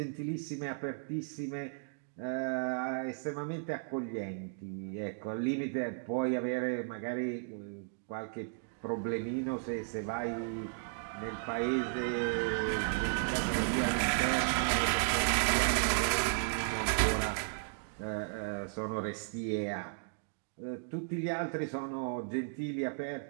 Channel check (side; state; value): left; silent; digital silence